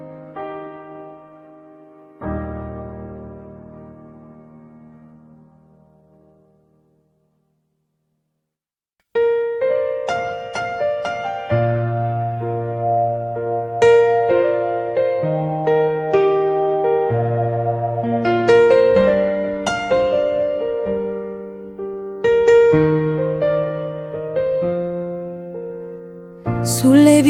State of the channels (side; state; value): both; identical; correlation 1.00